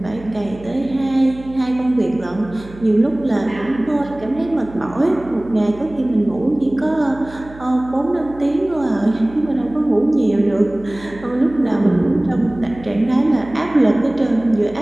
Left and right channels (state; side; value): noise; right; hum, 18 dB below the sound